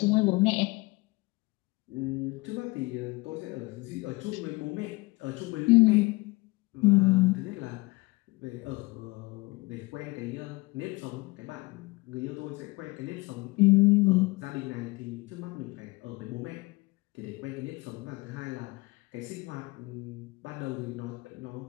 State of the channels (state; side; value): quieter; right; 23.9 dB